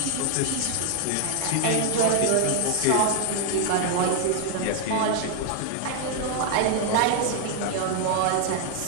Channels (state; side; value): different; both; correlation 0.00